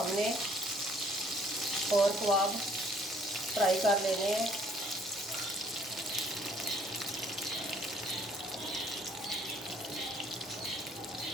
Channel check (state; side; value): normal; both; correlation 0.61